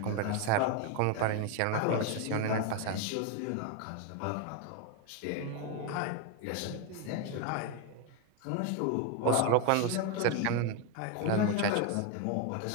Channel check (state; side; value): different; both; correlation 0.01